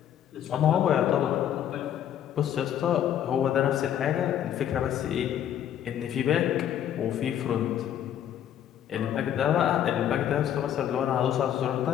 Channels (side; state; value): right; quieter; 10.3 dB